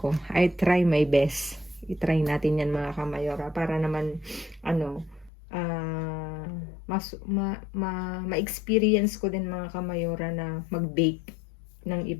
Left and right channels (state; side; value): drops out; right; at 5.3 s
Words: I try my best. I-try natin yan mga kamayora. Para naman, ma-experience ko din mga kamayora na mag-bake ng